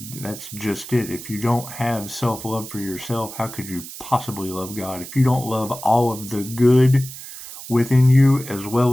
just it. If you don't have self-love for yourself, how could you possibly love God? If you don't love all of the good within you as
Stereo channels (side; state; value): right; noise; hiss, 12 dB below the sound